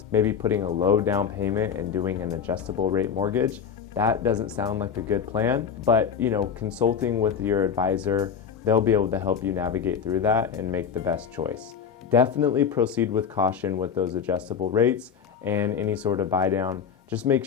maybe putting a low down payment and doing an adjustable rate mortgage. That doesn't sound like a good plan, but consulting with your advisor, they'll be able to help you navigate through that and make the best choice. Definitely proceed with caution with those adjustable rates and any sort of buy down. Just make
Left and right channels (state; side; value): quieter; right; 7.2 dB